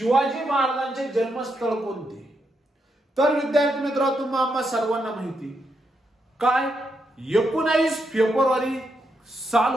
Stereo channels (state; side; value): normal; both; correlation 0.81